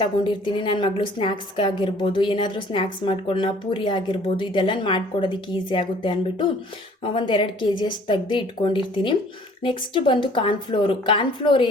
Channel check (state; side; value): normal; both; correlation 0.54